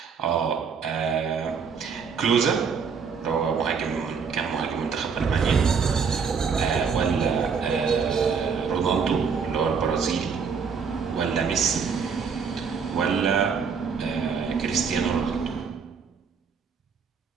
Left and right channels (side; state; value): left; quieter; 5.9 dB